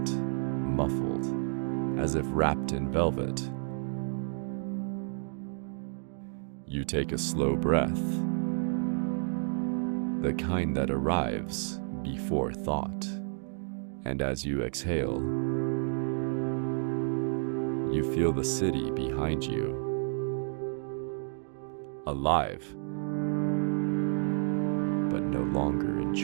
muffled, as if wrapped in velvet. You take a slow breath, the kind that arrives before thought, and as you exhale, you feel the city behind you, alive, but no longer in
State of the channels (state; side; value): silent; left; digital silence